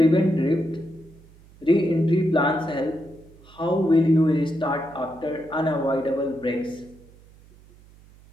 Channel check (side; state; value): right; noise; hum, 25 dB below the sound